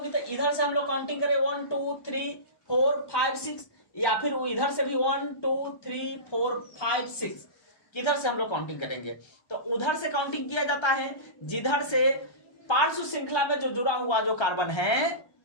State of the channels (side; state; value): right; late; 1.3 ms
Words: तो इधर से हम लोग काउंटिंग करें 1 2 3 4 5 6, या फिर वो इधर से भी 1 2 3 4 5 6, किधर से हम लोग काउंटिंग करेंगे, तो उधर से काउंटिंग किया जाता है जिधर से पार्श्व श्रृंखला में जो जुड़ा हुआ जो कार्बन है,